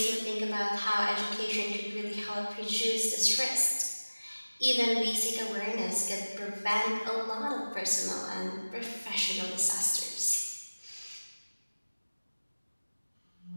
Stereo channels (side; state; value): both; inverted; correlation -1.00